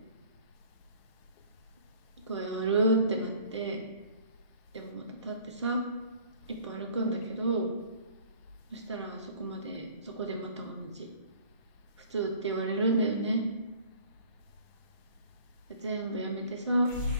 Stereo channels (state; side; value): inverted; both; correlation -0.52